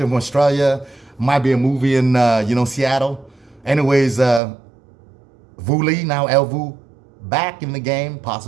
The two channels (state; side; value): drops out; left; at 4.4 s